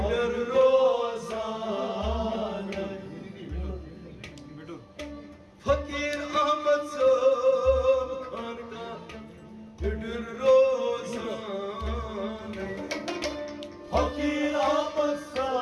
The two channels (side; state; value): both; identical; correlation 1.00